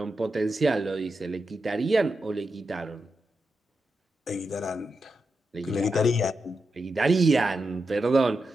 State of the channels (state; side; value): normal; both; correlation 0.87